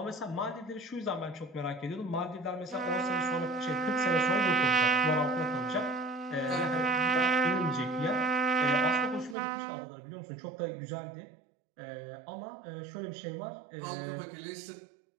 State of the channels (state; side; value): drops out; left; at 9.3 s